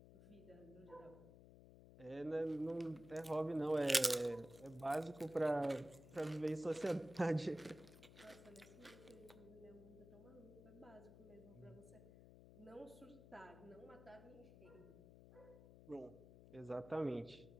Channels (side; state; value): left; noise; hum, 18 dB below the sound